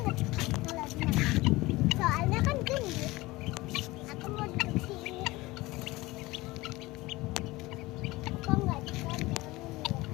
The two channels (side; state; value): right; quieter; 20.4 dB